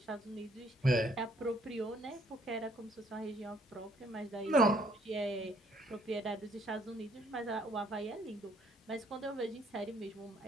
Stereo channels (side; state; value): both; normal; correlation 0.64